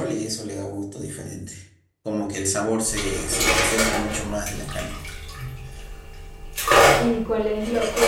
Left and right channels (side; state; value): both; identical; correlation 1.00